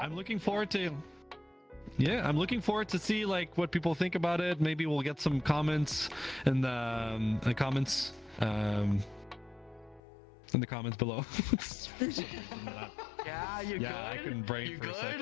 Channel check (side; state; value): right; drops out; at 10.0 s